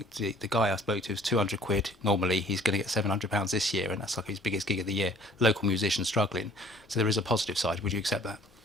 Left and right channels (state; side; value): normal; both; correlation 0.55